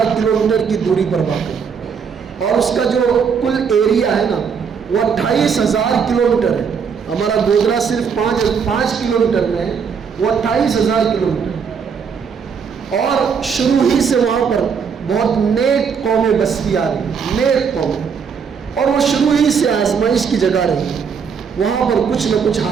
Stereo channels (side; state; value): left; quieter; 6.4 dB